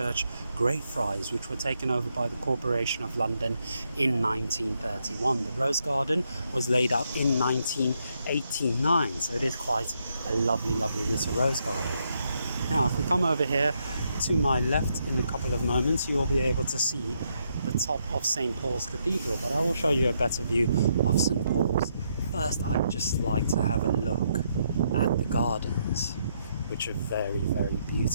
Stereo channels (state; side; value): inverted; both; correlation -0.77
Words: Greyfriars, which were taken over by the Corporation of London in 1931. The Rose Garden was laid out in 1989, so it is quite a lovely little rose garden. Now, if we come over here to my left in a couple of moments, you will be able to see the top of St. Paul's Cathedral, but I will show you a better view of St. Paul's. First, I'd just like to have a look at the gardens, which are very